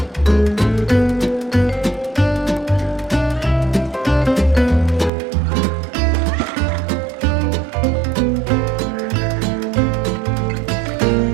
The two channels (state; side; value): drops out; left; at 5.1 s